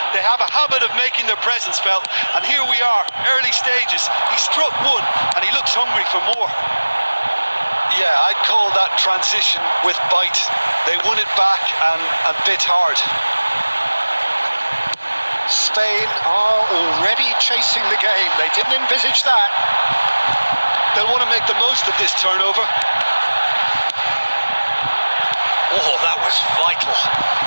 They have a habit of making their presence felt, and here we are, early stages. He struck one, and he looks hungry for more. Yeah, I'd call that transition with bite. They won it back and bit hard. Spain are already chasing the game. They didn't envisage that. They'll want to make the most of this turnover. Oh, that was vital.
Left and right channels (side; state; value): both; inverted; correlation -1.00